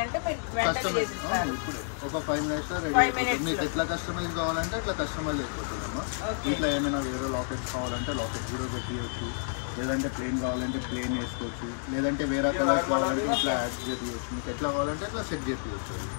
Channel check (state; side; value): silent; right; digital silence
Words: అంటే మీరు వెంటనే చేసిస్తారు. ఒక 5 మినిట్స్ రెడీ. మీకు ఎట్లా కస్టమైజ్ కావాలంటే అట్లా కస్టమైజ్ అయిపోతుందమ్మా. ఇట్లా ఏమైనా వేరే లాకెట్స్ కావాలంటే లాకెట్ కూడా పెట్టియచ్చు, లేదంటే ప్లేన్ కావాలంటే ప్లేన్ వేసుకోవచ్చు, లేదంటే వేరే కలర్స్ కావాలంటే ఇట్లా యాడ్ చేయవచ్చు. మీకు ఎట్లా కావాలంటే అట్లా సెట్ చేయవచ్చు.